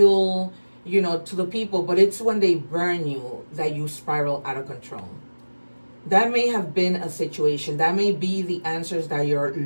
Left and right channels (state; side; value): inverted; both; correlation -1.00